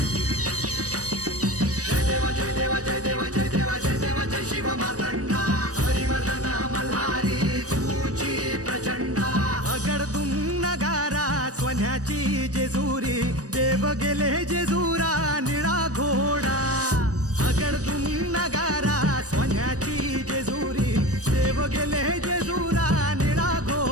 जय देवा जय देवा जय देवा जय देवा जय देवा जय शिव मार्तंडा. हरिवर्धन मल्हारी तुझी प्रचंडा. अगडदुम नगारा सोन्याची जेजुरी देव गेले जेजुरा निळा घोडा. अगडदुम नगारा सोन्याची जेजुरी देव गेले जेजुरा निळा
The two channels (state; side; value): late; left; 0.66 ms